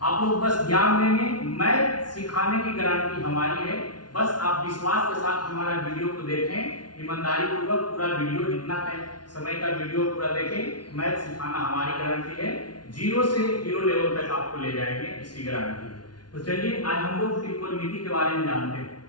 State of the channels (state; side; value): late; right; 0.70 ms